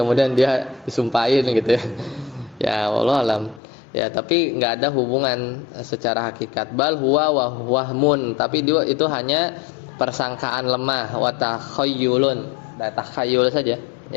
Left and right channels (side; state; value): right; drops out; at 3.6 s